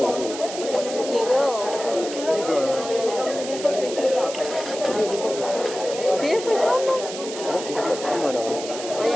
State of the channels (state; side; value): noise; right; hiss, 10 dB below the sound